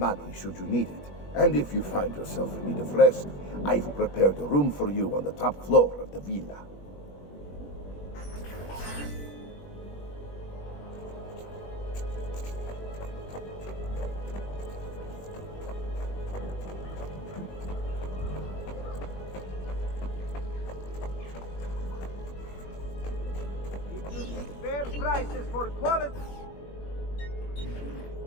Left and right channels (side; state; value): right; late; 21 ms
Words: should you need it. And if you find yourself in need of rest, I've prepared a room for you on the top floor of the villa. Fair prices for quality.